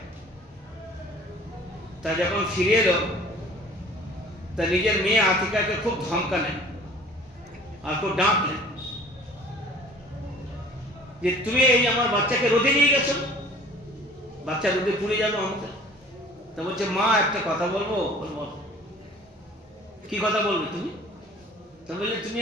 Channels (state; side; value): normal; both; correlation 0.49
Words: তা যখন ফিরে এলো, তা নিজের মেয়ে আতিকাকে খুব ধমকালেন আর খুব ডাকলেন যে তুমি এই আমার বাচ্চাকে রোদে নিয়ে গেছো, বাচ্চা রোদে পুড়ে যাবে আমাকে। তা বলছে, মা একটা কথা বলবো। বলবো, কি কথা বলবে তুমি? তা বললে, তুমি